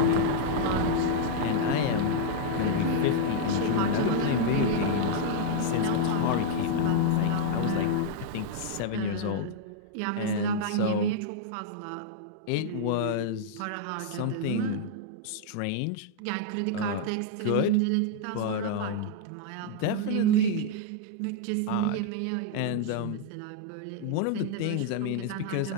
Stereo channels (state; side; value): different; both; correlation -0.01